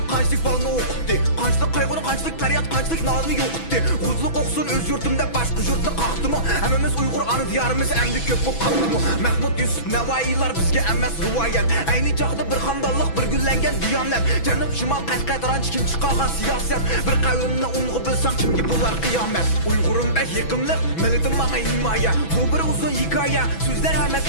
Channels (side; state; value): right; late; 6.1 ms